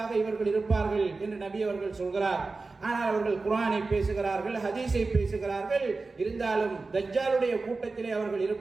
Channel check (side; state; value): left; quieter; 3.8 dB